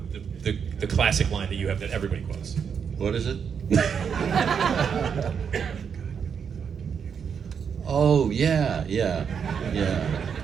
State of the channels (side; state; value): left; quieter; 7.0 dB